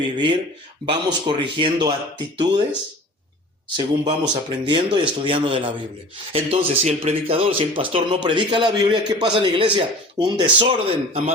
Vamos corrigiendo actitudes según vamos aprendiendo y estudiando de la Biblia. Entonces, si el predicador, si el pastor no predica la Biblia, ¿qué pasa en la iglesia? Un desorden a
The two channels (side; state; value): both; normal; correlation 0.41